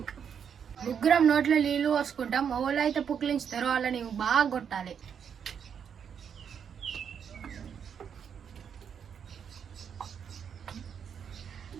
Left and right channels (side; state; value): left; quieter; 7.6 dB